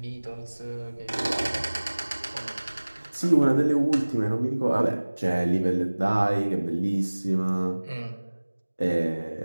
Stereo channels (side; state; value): both; inverted; correlation -1.00